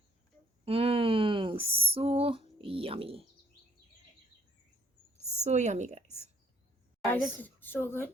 so yummy. So yummy, guys. This is so good.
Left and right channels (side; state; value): both; normal; correlation 0.64